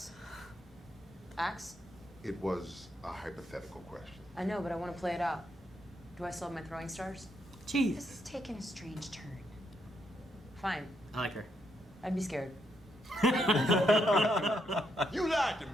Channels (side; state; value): both; normal; correlation 0.78